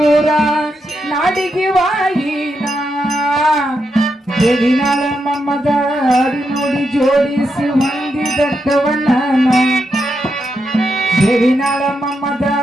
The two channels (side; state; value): both; normal; correlation 0.84